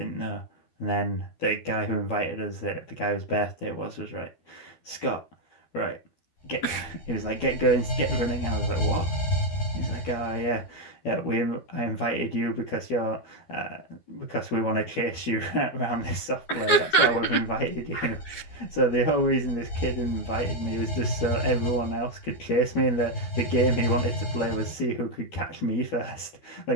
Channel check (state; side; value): late; right; 13 ms